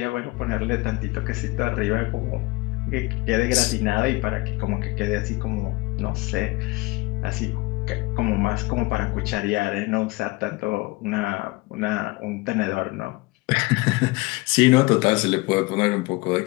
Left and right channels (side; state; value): right; quieter; 23.1 dB